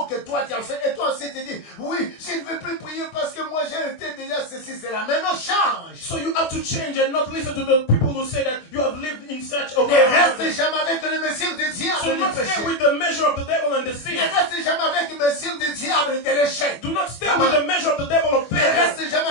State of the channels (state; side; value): late; right; 24 ms